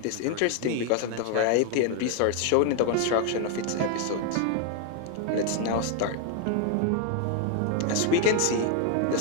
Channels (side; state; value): both; different; correlation 0.01